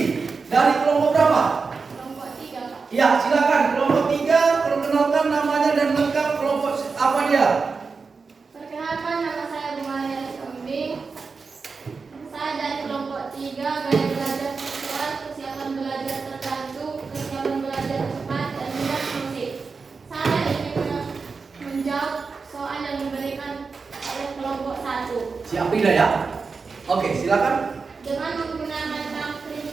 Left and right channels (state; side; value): quieter; left; 4.7 dB